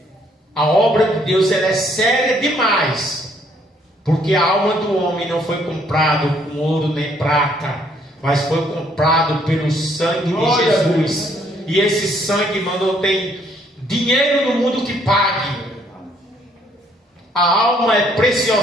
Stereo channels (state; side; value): normal; both; correlation 0.66